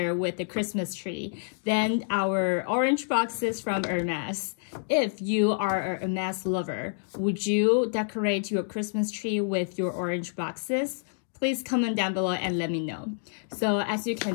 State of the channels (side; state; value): right; silent; digital silence